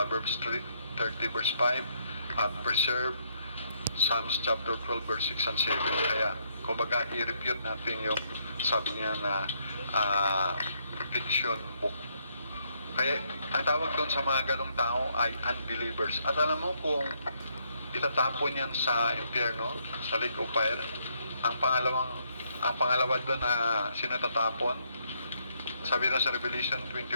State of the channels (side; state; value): both; inverted; correlation -0.73